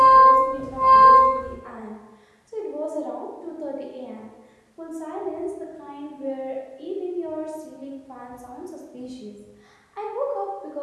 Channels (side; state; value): both; identical; correlation 1.00